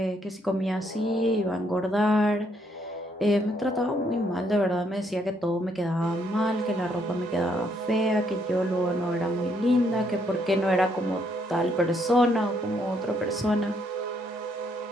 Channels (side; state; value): both; normal; correlation 0.71